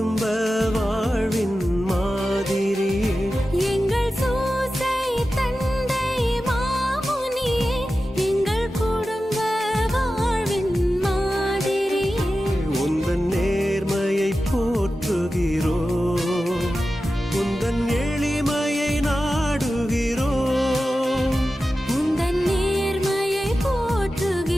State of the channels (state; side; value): normal; both; correlation 0.93